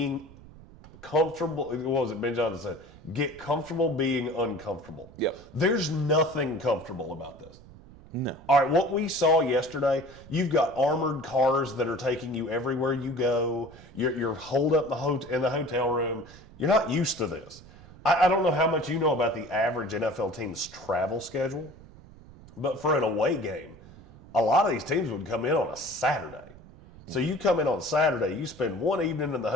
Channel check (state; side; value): noise; right; rumble, 20 dB below the sound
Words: comfortable. What was it Ben Johnson said? Get comfortable being uncomfortable. Yep. There's nothing comfortable about this. No. All right, what we saw yesterday, you've got armored cars that are taking you everywhere you go. You're holed up in the hotel room. You're not used to this. I don't know how much you know about the average NFL team's travel schedule, but for an away game, a lot of these teams would come in on a Saturday. So you come in on Saturday, you spend one evening in the